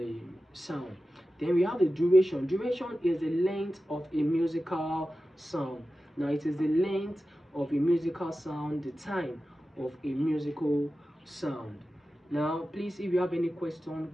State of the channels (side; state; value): both; normal; correlation 0.94